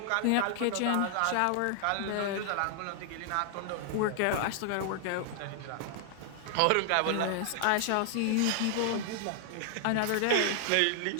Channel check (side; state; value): both; different; correlation 0.00